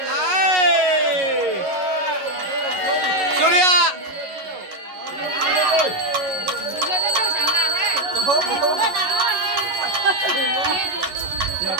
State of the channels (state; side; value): late; left; 11 ms